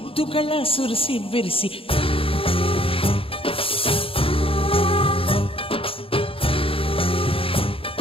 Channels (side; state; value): right; late; 0.27 ms